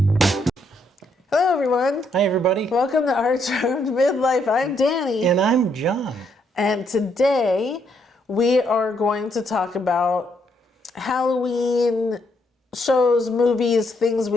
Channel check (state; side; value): normal; both; correlation 0.74